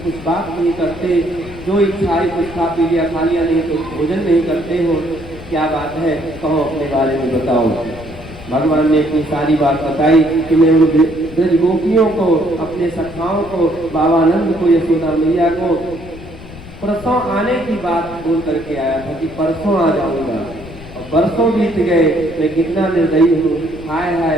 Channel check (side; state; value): left; noise; rumble, 16 dB below the sound